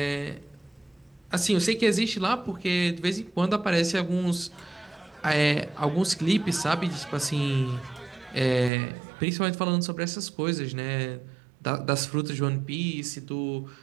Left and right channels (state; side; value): drops out; left; at 8.7 s